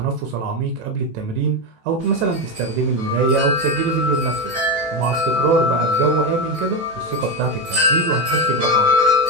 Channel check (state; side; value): late; left; 18 ms